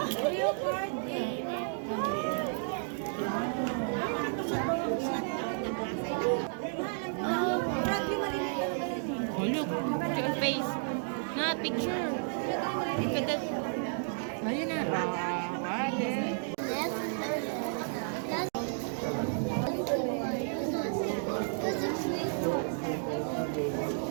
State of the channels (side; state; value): left; silent; digital silence